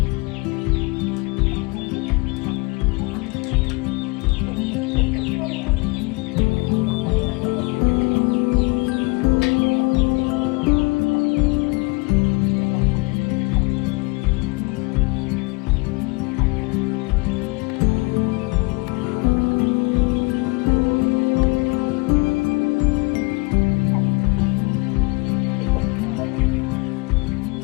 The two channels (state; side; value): quieter; right; 27.4 dB